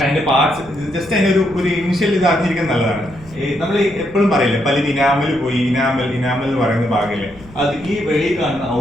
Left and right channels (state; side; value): noise; left; rumble, 20 dB below the sound